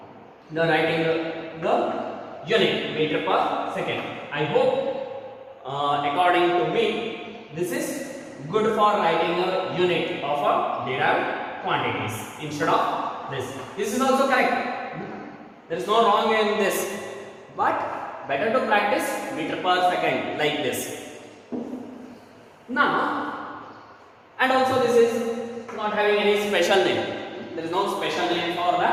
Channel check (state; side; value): identical; both; correlation 1.00